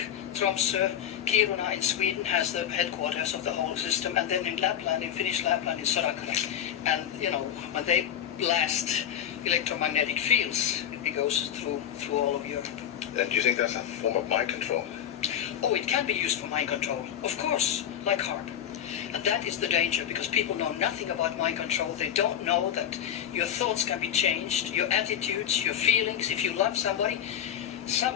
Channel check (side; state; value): right; quieter; 9.9 dB